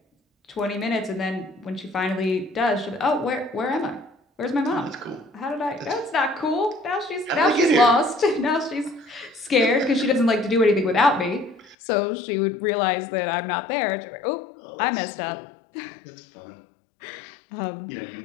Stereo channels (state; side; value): drops out; right; at 11.8 s